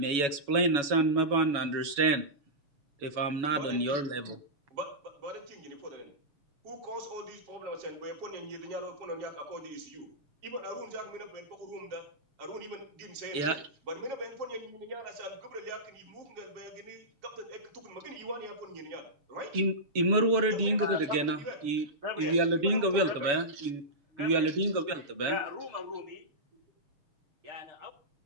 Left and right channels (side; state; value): left; late; 7.1 ms